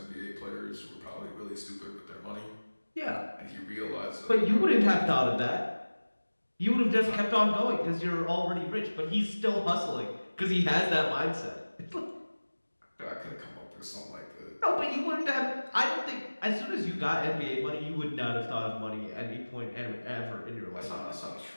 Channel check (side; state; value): both; inverted; correlation -1.00